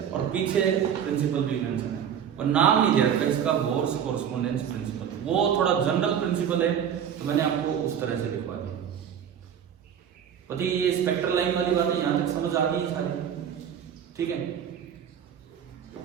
और पीछे प्रिंसिपल भी मेंशन है, और नाम नहीं दे रखा इसका, बोर्स कोरेस्पोंडेंस प्रिंसिपल। वो थोड़ा जनरल प्रिंसिपल है, तो मैंने आपको उस तरह से लिखवा दिया। पति ये स्पेक्ट्रल लाइन वाली बात है, यहाँ तक समझ आ गई सारी, ठीक है।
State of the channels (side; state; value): left; quieter; 8.7 dB